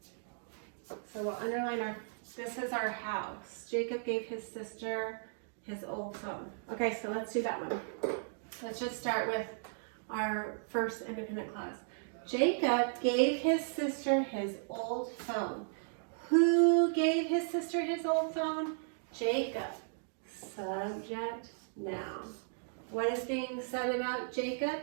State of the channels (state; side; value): silent; left; digital silence